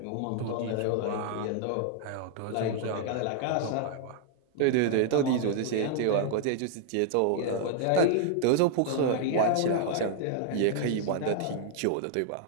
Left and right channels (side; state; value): both; different; correlation -0.01